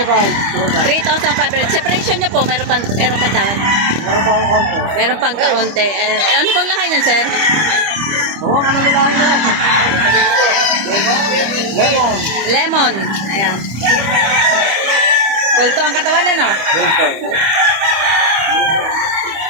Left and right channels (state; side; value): late; left; 25 ms